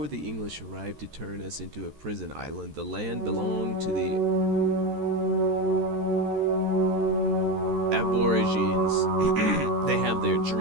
the English arrived to turn us into a prison island, the land belonged to the Aborigines. They have their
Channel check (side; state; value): left; late; 14 ms